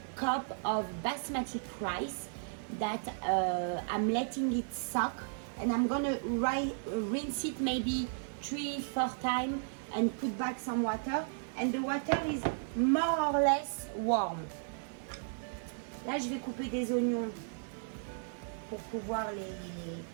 cups of basmati rice that I'm letting it soak, and I'm gonna rinse it maybe 3-4 times and put back some water, and the water is more or less warm. Là je vais couper des oignons pour pouvoir les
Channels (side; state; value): left; silent; 55 dB below the other